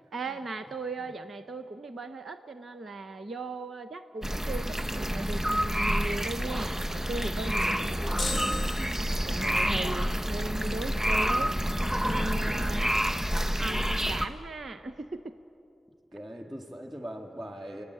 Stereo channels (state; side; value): normal; both; correlation 0.95